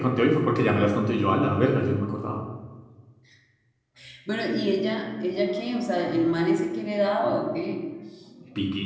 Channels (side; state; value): both; identical; correlation 1.00